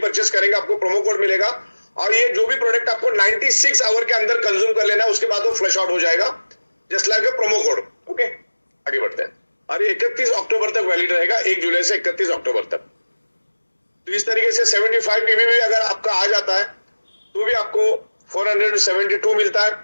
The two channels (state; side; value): inverted; both; correlation -1.00